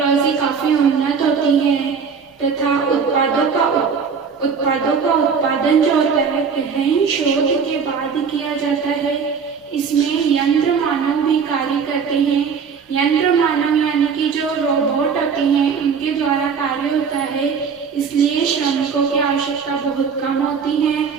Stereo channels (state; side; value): quieter; left; 6.1 dB